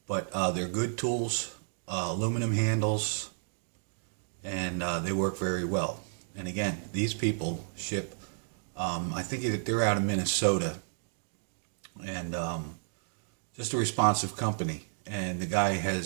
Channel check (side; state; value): left; silent; digital silence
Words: But they're good tools, aluminum handles, and they work very well. And again, these people ship, I think they're out of Minnesota, and just a responsive company. And the guy